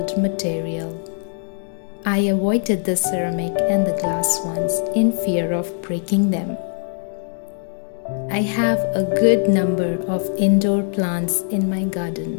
material. I avoided the ceramic and the glass ones in fear of breaking them. I have a good number of indoor plants in my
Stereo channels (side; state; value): right; silent; 57 dB below the other